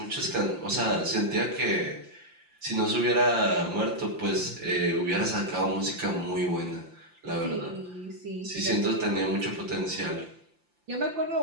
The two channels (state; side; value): late; left; 5.8 ms